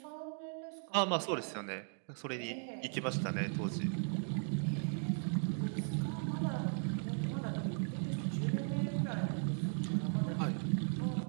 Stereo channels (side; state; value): left; silent; 53 dB below the other